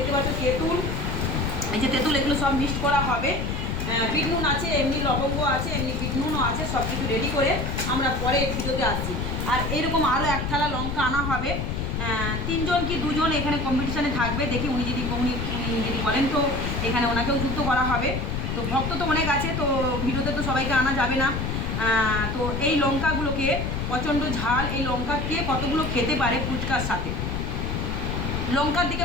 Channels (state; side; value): noise; left; rumble, 2 dB below the sound